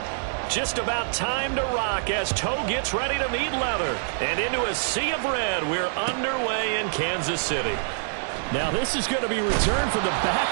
Just about time to rock as toe gets ready to meet leather. And into a sea of red, we're underway in Kansas City. Now this is going to be returned from the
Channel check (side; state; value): left; silent; digital silence